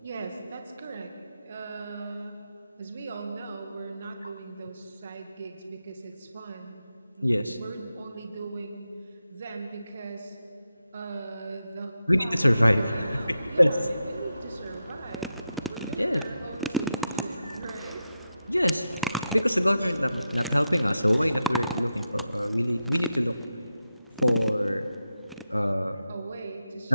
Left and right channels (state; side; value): inverted; both; correlation -0.88